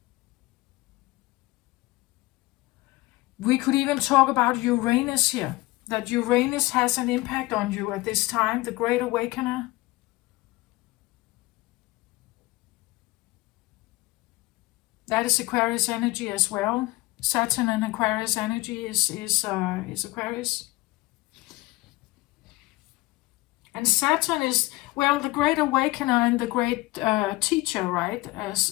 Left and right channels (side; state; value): right; quieter; 20.2 dB